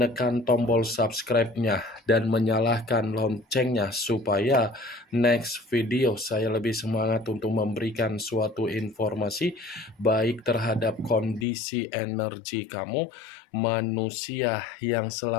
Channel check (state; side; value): drops out; right; at 11.5 s